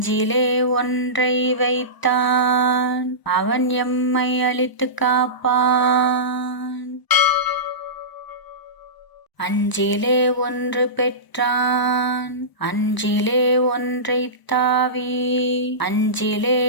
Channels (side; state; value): right; late; 1.0 ms